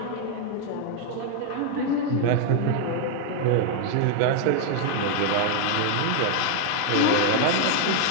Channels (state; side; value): different; both; correlation 0.01